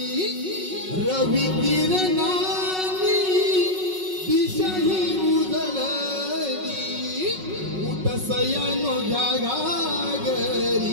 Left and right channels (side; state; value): left; late; 5.4 ms